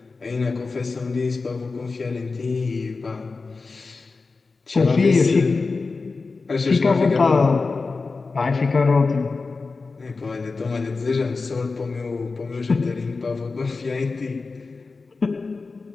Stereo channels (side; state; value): right; quieter; 4.1 dB